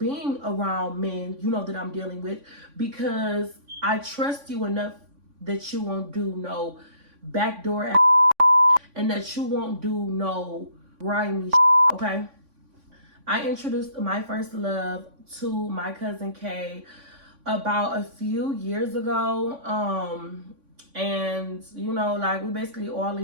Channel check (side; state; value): left; late; 3.5 ms